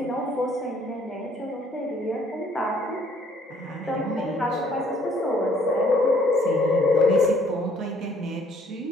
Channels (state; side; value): normal; both; correlation 0.62